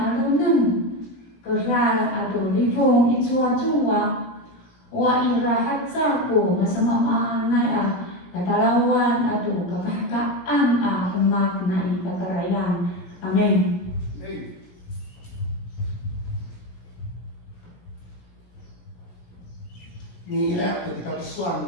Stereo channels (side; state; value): right; late; 17 ms